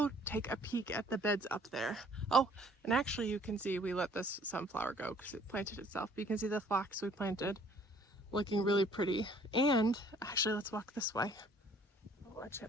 take a peek at the beds up there. Oh, and actually you can see we let this sunflower go because it planted itself. But you can see the phlox we planted looking really pretty. And actually, let's walk this way. Oh, what's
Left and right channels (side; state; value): both; normal; correlation 0.58